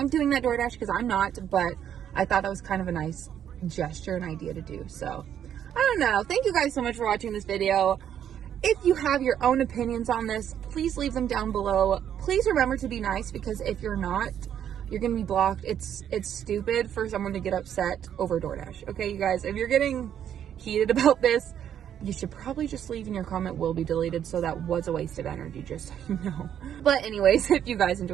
doing that DoorDash, because I'm not, but I thought that was kind of a nice gesture and idea to do. So I don't know. Thank you guys so much for watching this video. If you have your own opinions on this, please leave them down below. Please remember to be nice, because if you're not, you're going to be blocked. It's stupid for someone to get upset over DoorDash. Okay, you guys, if you're getting heated about this, you should probably just leave, and your comment will be deleted. So that was a waste of energy, just so you know. But anyways, if you guys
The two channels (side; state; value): left; quieter; 9.6 dB